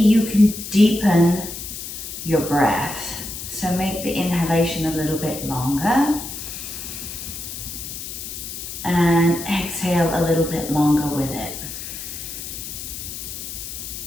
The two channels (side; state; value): left; noise; hiss, 8 dB below the sound